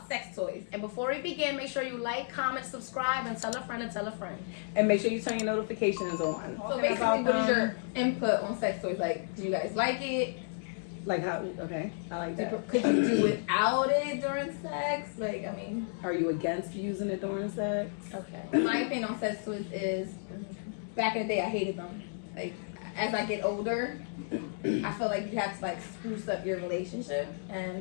sex toys. And before we begin, make sure you like, comment, subscribe, and tell a friend and tell a friend. And make sure you turn your notifications on. So basically, what is your input on sex toys? Like, do you guys like it? Like how? Okay, I like that. Could you do without it during sex? Like, I mean, are you against using it during sex? Okay. My opinion on sex toys is, back in the day, I hated them. Like, as I get older, I feel like you have to like spruce up your relationship,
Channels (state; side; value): silent; right; digital silence